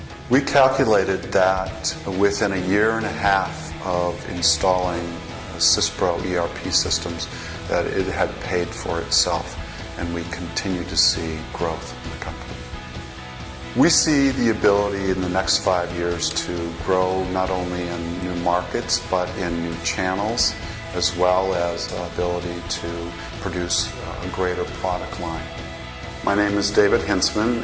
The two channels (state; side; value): identical; both; correlation 1.00